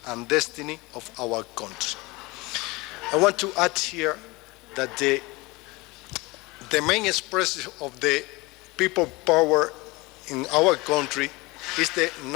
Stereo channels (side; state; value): right; quieter; 23.4 dB